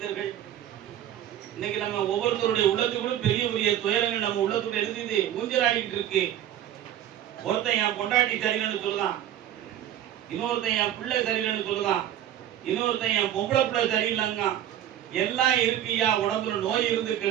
இன்னைக்கு நம்ம ஒவ்வொருத்தருடைய உள்ளத்துக்குள்ள பெரிய பெரிய துயரங்கள் நம்ம உள்ளத்துக்குள்ள எழுதி ஊஞ்சலாடிட்டு இருக்கு. ஒருத்தன் என் பொண்டாட்டி சரியில்லைன்னு சொல்லுதான், இன்னொருத்தன் என் பிள்ளை சரியில்லைன்னு சொல்லுதான், இன்னொருத்தன் என் பொம்பளை பிள்ளை சரியில்லைங்க. எல்லாம் இருக்கியா, உடம்புல நோய் இருந்து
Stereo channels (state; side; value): quieter; left; 11.4 dB